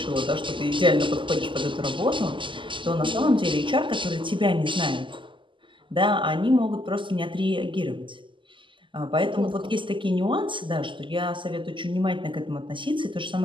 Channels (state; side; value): late; left; 0.24 ms